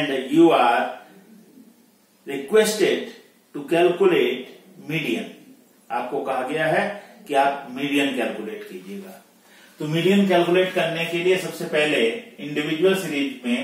you are requested to calculate median. आपको कहा गया है कि आप मीडियन कैलकुलेट कीजिएगा। तो मीडियन कैलकुलेट करने के लिए सबसे पहले इंडिविजुअल सीरीज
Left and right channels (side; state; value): both; identical; correlation 1.00